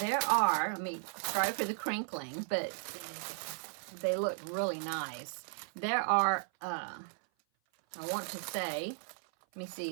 are, sorry for the crinkling, but they look really nice. There are, I want to say, let me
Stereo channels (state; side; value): silent; left; 54 dB below the other